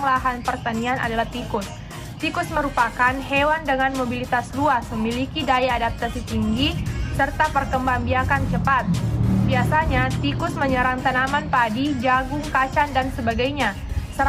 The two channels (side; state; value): both; identical; correlation 1.00